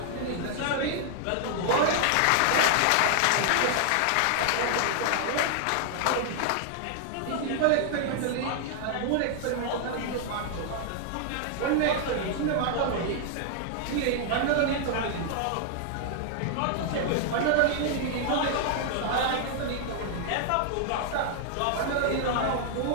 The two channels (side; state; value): both; different; correlation 0.00